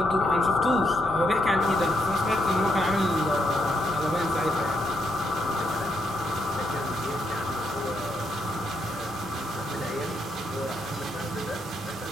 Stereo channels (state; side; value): normal; both; correlation 0.77